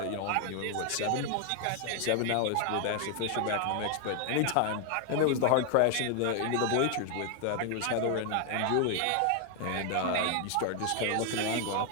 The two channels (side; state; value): both; different; correlation 0.00